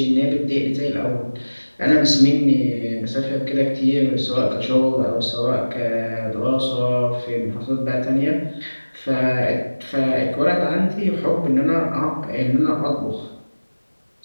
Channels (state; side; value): inverted; both; correlation -1.00